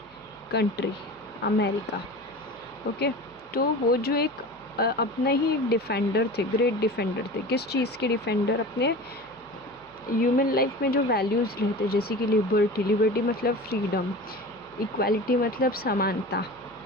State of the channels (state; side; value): noise; right; hum, 28 dB below the sound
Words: country, America. Okay, तो वो जो एक अपना ही एक defender थे, great defender थे. किस चीज़ के डिफेंडर? अपने ह्यूमन लाइफ में जो वैल्यूज़ रहते, जैसे कि लिबर्टी मतलब फ्रीडम, इक्वालिटी मतलब समानता